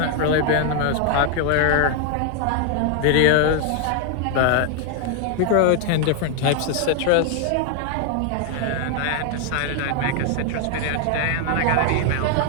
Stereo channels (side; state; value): both; different; correlation 0.00